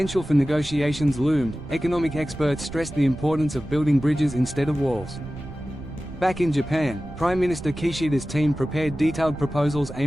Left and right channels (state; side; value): noise; right; rumble, 13 dB below the sound